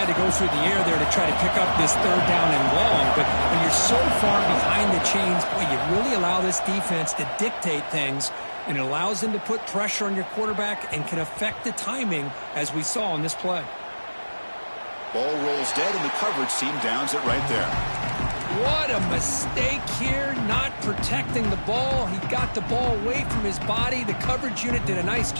to go through the air there to try to pick up this 3rd down and long, but when you're so far behind the chains, boy, you really allow this defense to dictate things, and it allows them to put pressure on your quarterback and can affect the timing, as we saw on this play. Ball rolls dead, and the coverage team downs it right there. What a mistake here, not protecting the ball. He got the ball away from his body. The coverage unit did a nice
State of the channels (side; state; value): both; inverted; correlation -1.00